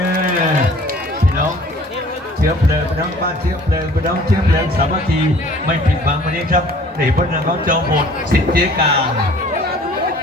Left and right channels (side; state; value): both; normal; correlation 0.51